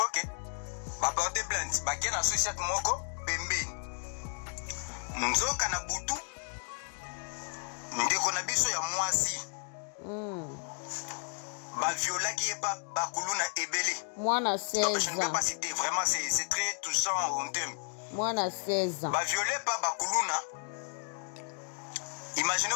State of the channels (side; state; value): right; silent; 56 dB below the other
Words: Ba porter plainte. Ba kena société moko pembeni. Nzoka na butu. Ndeko na biso ya mwasi. Ba viola qui est pas bakuluna ebele. Mwana 16 ans. Je ne peux pas citer, vraiment c'est très touchant en termes. Mwana 16 ans. Ba violé pas bakuluna.